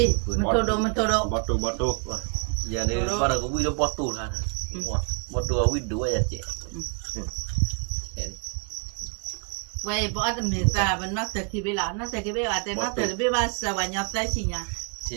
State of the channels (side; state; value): left; quieter; 37.1 dB